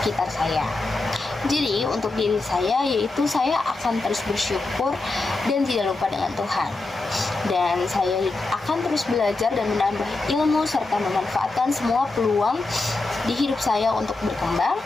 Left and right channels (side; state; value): right; quieter; 3.3 dB